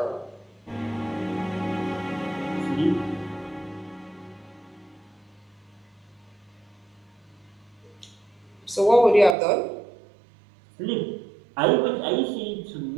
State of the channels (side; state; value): left; drops out; at 9.3 s